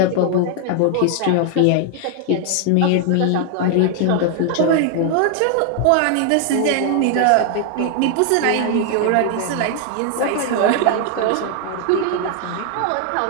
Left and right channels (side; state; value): both; different; correlation 0.00